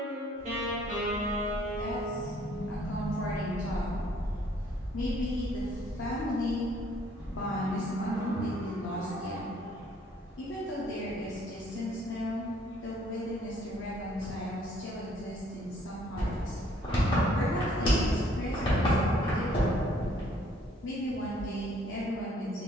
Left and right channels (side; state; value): both; normal; correlation 0.62